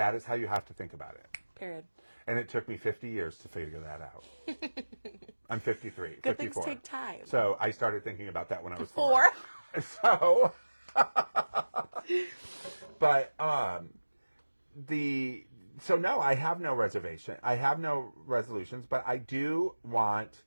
is how you have to think about it. Period. And it took me 50 years to figure that out. I'm 53, Good 54. things take time. So I started thinking about that when I was 4. 4. So, but so no, I have no reservation. I have no resolutions, but I do want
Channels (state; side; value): inverted; both; correlation -1.00